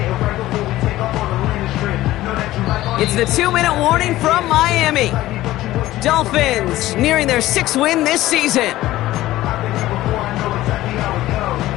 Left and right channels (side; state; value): right; quieter; 15.8 dB